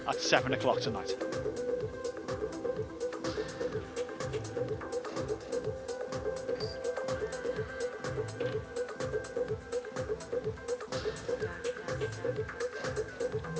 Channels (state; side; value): identical; both; correlation 1.00